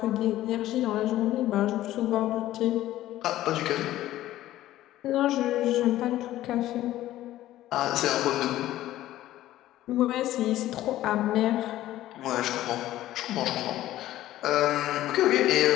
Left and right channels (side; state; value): right; quieter; 14.4 dB